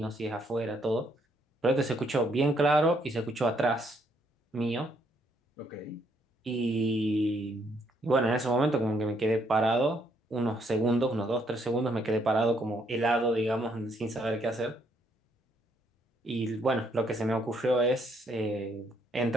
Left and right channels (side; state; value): both; normal; correlation 0.71